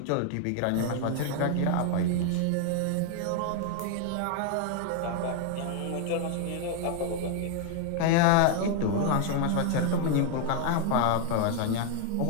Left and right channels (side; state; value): both; different; correlation 0.00